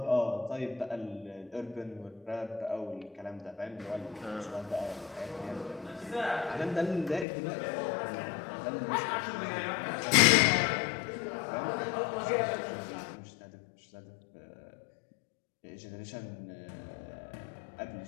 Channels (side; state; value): right; drops out; at 7.2 s